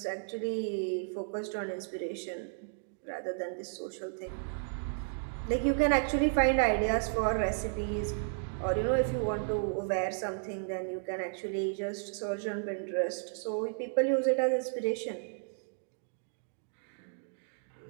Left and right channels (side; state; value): left; silent; digital silence